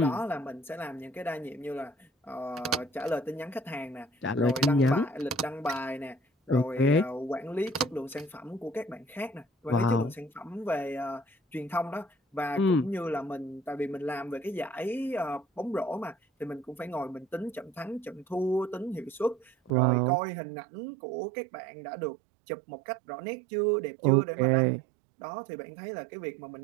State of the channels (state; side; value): drops out; left; at 19.7 s